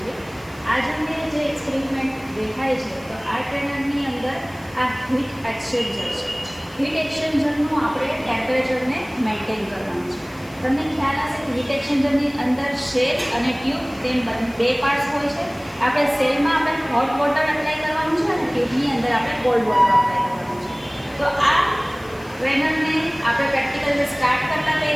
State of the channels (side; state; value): left; noise; hiss, 25 dB below the sound